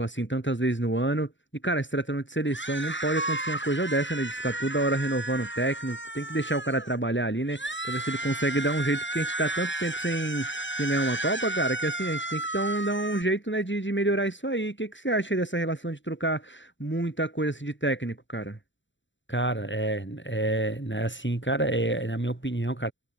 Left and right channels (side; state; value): right; late; 0.54 ms